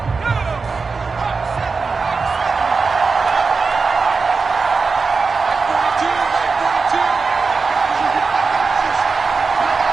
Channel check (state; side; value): quieter; left; 4.6 dB